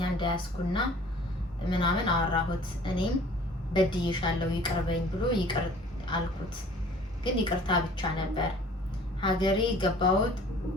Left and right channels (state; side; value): normal; both; correlation 0.50